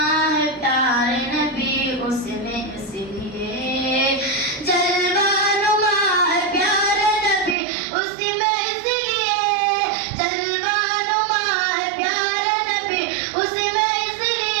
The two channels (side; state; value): left; drops out; at 7.6 s